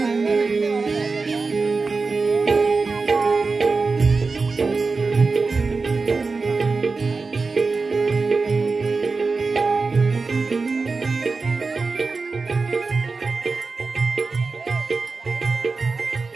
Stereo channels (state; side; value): quieter; left; 4.2 dB